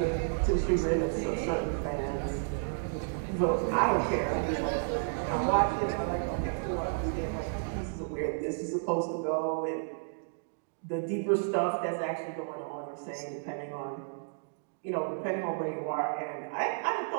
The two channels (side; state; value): left; silent; digital silence